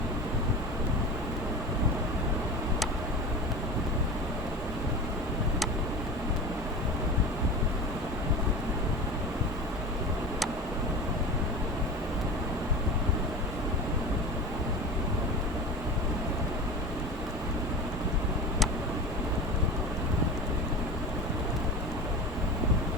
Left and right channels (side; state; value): both; normal; correlation 0.31